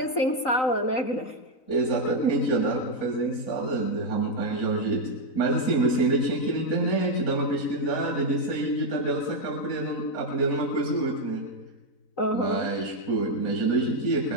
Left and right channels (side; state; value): right; late; 4.0 ms